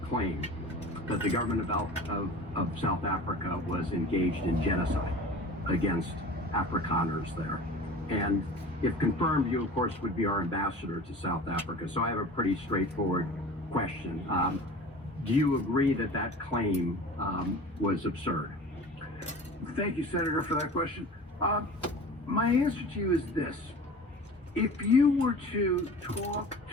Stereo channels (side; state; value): both; normal; correlation 0.39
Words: claim that the government of South Africa was engaged in genocide against Afrikaners there. And if confirmed, you, of course, would be our ambassador to South Africa. So I have a pretty straightforward question. Do you agree that that claim was absurd? Thank you, Senator, for that question. My answer to you is this. If you were to talk